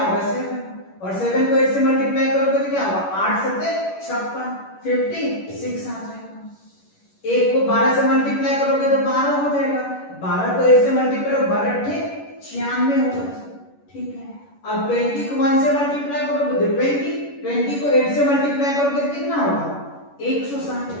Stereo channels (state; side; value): late; right; 11 ms